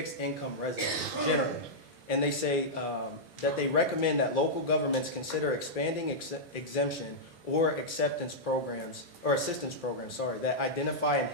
income residents generally. And they say that they recommend that local governments consider expanding exemption or assistance programs, that identify and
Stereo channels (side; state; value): both; normal; correlation -0.08